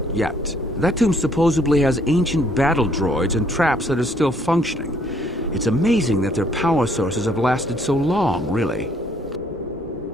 yet. That tomb supposedly has ancient battle droids and traps that are still functioning. It's amazing that their power sources have lasted so long, really.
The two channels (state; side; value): normal; both; correlation 0.64